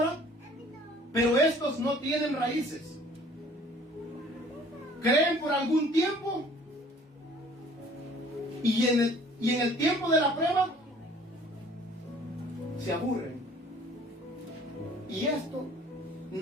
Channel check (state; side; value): normal; both; correlation 0.53